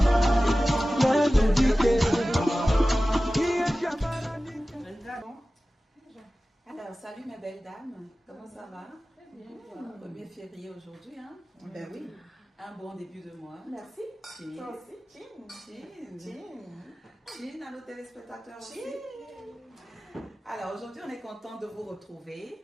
nenu dike. Alors, salut mes belles dames, comment ça va? Bien. 1er février aujourd'hui, hein? Ben oui. Un bon début de mois. Merci. Cheers. Toi aussi. Cheers à nos téléspectateurs aussi. Alors, aujourd'hui, on est content de vous retrouver.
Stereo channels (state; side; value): normal; both; correlation 0.96